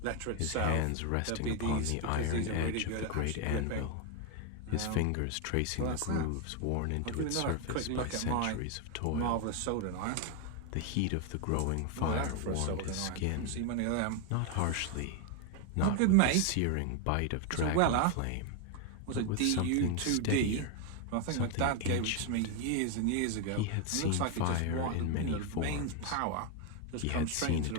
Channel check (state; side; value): different; both; correlation 0.01